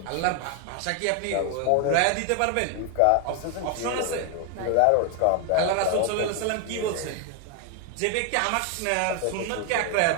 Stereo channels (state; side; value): different; both; correlation 0.01